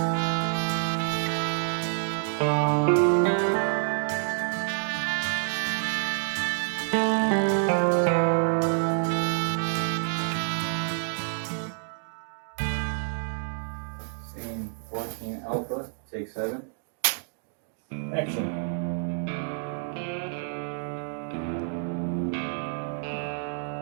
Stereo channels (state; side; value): silent; left; 59 dB below the other